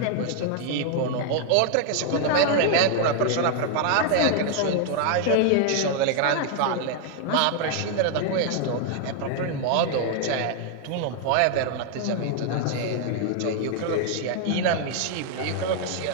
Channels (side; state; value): both; different; correlation 0.00